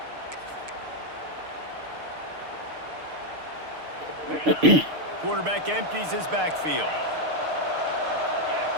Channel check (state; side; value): late; left; 6.6 ms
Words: Quarterback empties his backfield.